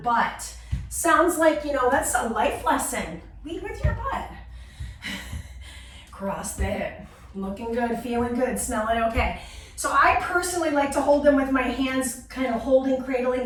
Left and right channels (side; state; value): both; identical; correlation 1.00